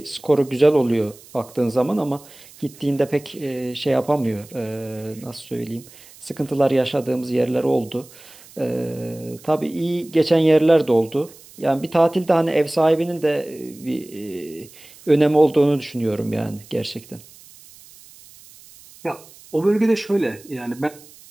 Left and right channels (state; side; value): noise; right; hiss, 22 dB below the sound